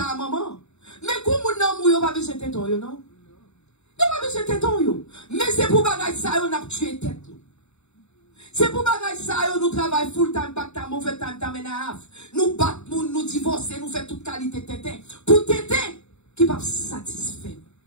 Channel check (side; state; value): right; late; 0.81 ms